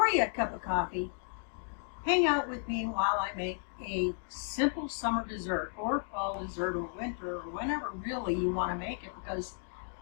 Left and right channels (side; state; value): right; silent; 55 dB below the other